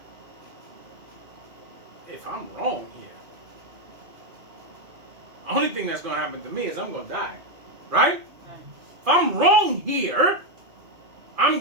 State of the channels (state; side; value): late; left; 2.4 ms